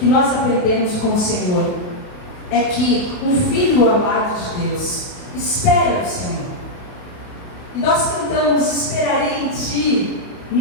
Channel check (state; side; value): late; right; 28 ms